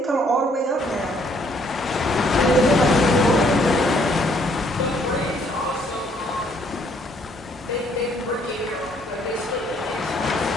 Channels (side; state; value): both; normal; correlation 0.66